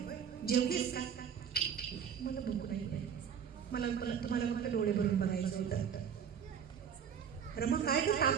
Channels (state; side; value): quieter; left; 7.7 dB